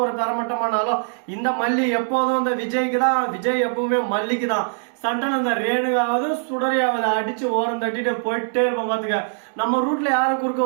ஒரு தரமட்டமானாலும் இந்த மல்லி எப்போதும் இந்த விஜய்க்கு தான், விஜய் எப்பவுமே மல்லிக்கு தான். சண்டல இந்த ரேணுகாவது சுடரியாவது அடிச்சு ஓரம் தட்டிட்டு போயிட்டே இருப்போம். பாத்துக்க, நம்ம ரூட்ல யாரும் குறுக்க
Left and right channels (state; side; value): silent; left; 64 dB below the other